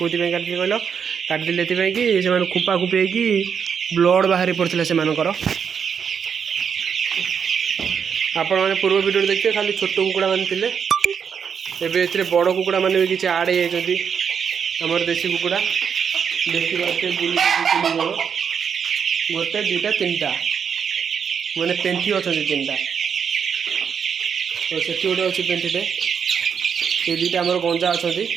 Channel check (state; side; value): quieter; left; 7.0 dB